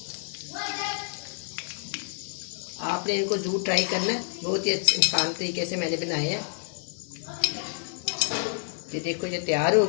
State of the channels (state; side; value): silent; right; digital silence